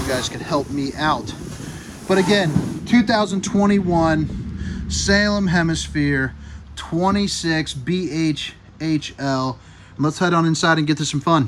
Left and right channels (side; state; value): both; identical; correlation 1.00